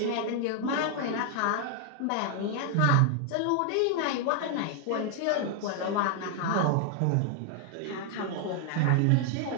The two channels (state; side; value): different; both; correlation 0.00